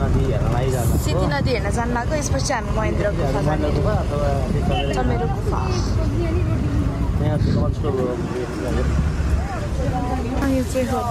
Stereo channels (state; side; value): identical; both; correlation 1.00